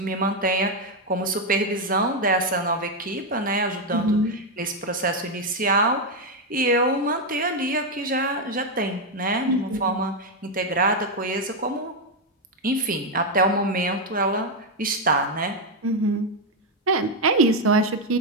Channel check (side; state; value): both; normal; correlation 0.03